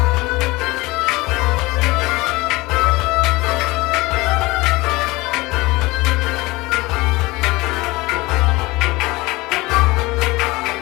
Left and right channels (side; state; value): right; quieter; 21.8 dB